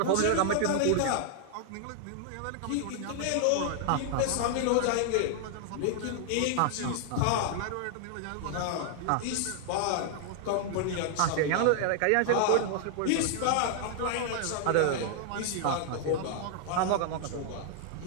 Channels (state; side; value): different; both; correlation 0.00